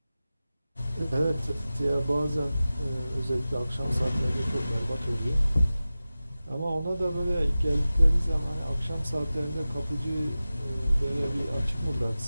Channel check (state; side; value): inverted; both; correlation -0.95